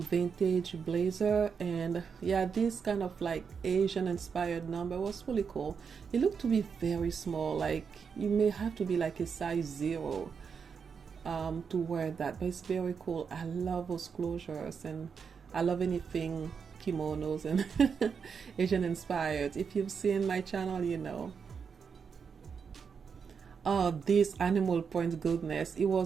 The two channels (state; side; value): quieter; left; 6.2 dB